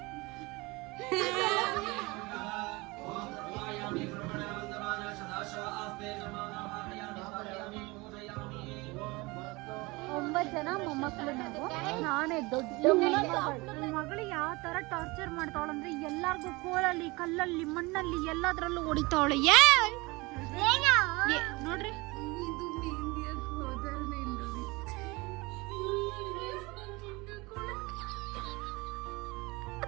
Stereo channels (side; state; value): left; quieter; 24.0 dB